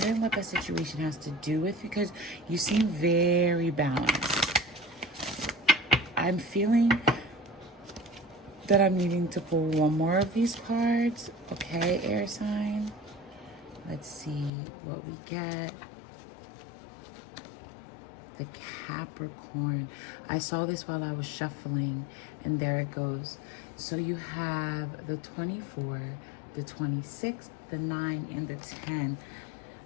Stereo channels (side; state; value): right; drops out; at 14.5 s